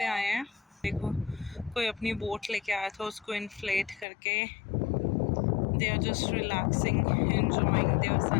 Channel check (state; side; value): drops out; right; at 4.0 s